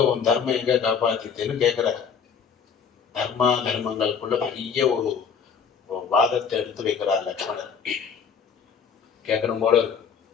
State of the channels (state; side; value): quieter; right; 6.6 dB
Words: உன் தர்மம் எங்க காப்பாத்திட்டுன்னு கேட்கிற. தர்மா தர்மங்களுக்குள்ள பெரிய ஒரு வாதத்தை எடுத்து வைக்கிறார் லக்ஷ்மணன். கேட்கணும் போல